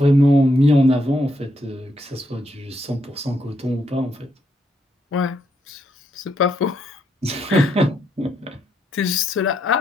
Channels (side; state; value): both; normal; correlation 0.77